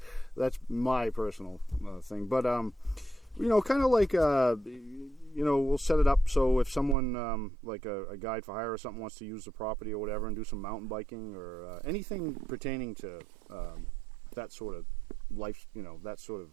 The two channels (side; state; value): left; drops out; at 7.0 s